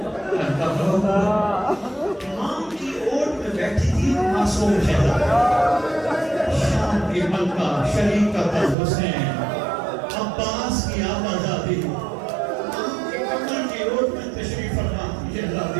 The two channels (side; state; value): left; drops out; at 8.8 s